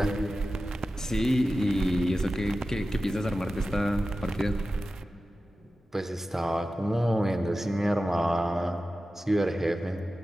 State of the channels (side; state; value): both; normal; correlation 0.94